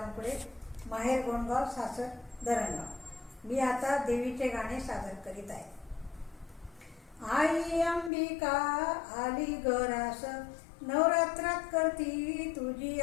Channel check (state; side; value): drops out; right; at 8.1 s